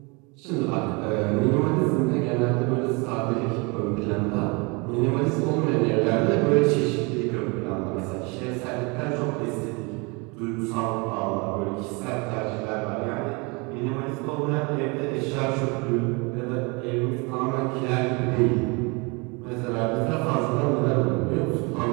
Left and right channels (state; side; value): quieter; left; 29.1 dB